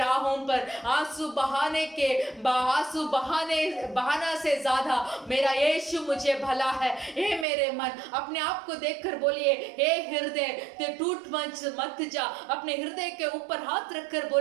पर आंसू बहाना से ज्यादा मेरा यीशु मुझे भला है। हे मेरे मन, अपने आप को देखकर बोलिए, हे हृदय तू टूट मत जा। अपने हृदय के ऊपर हाथ रखकर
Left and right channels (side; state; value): left; drops out; at 7.5 s